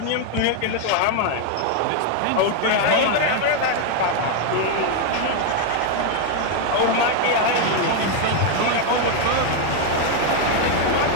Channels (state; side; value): different; both; correlation 0.01